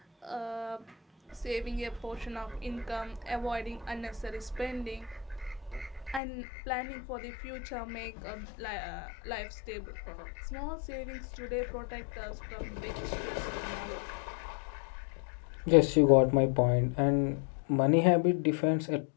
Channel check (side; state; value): right; drops out; at 6.2 s